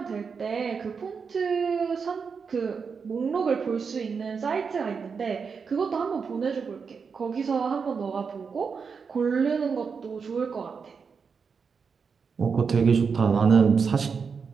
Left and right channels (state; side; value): quieter; left; 5.7 dB